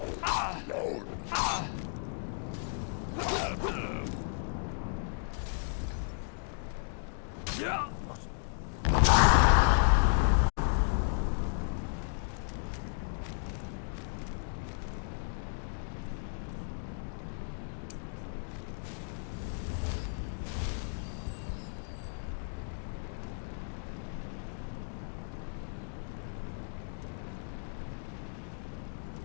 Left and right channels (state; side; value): silent; right; digital silence